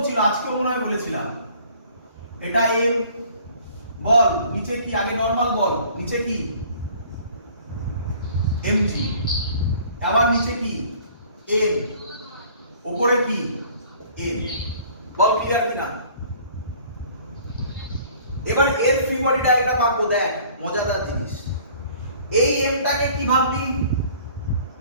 আজকে মনে হয় বলেছিলাম, এটা এম বল, নিচে কি, আগে নরমাল বল, নিচে কি এমজি, আবার নিচে কি এন, উপরে কি এন। বল ক্লিয়ার কিনা? এবার এর ফ্রি বডি ডায়াগ্রাম আঁকবো। দেখ মজাদার জিনিস, এই এমটাকে কি ভাববি?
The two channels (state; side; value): inverted; both; correlation -0.53